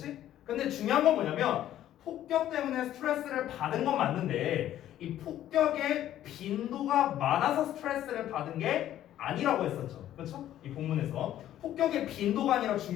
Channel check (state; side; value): quieter; right; 12.2 dB